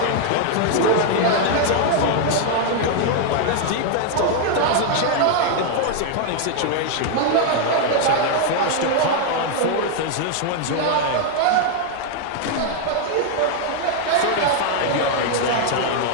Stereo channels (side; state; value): both; different; correlation 0.00